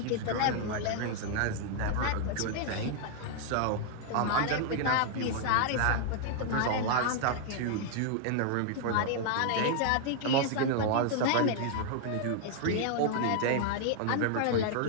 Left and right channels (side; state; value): both; different; correlation 0.00